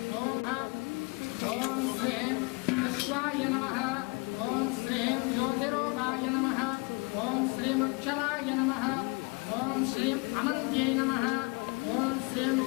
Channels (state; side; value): quieter; right; 29.7 dB